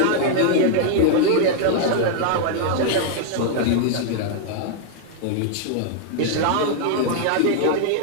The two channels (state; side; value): different; both; correlation 0.00